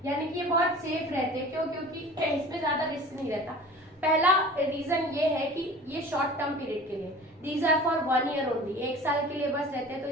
यानी कि ये बहुत सेफ रहते हैं। क्यों? क्योंकि इसमें ज्यादा रिस्क नहीं रहता। पहला रीजन ये है कि ये शॉर्ट टर्म पीरियड के लिए, these are for 1 year only, 1 साल के लिए बस रहते हैं, तो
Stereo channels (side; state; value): both; normal; correlation 0.42